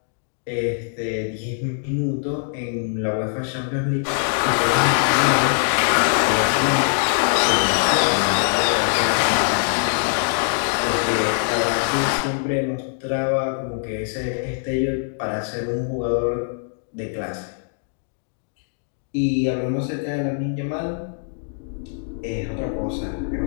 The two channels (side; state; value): right; silent; digital silence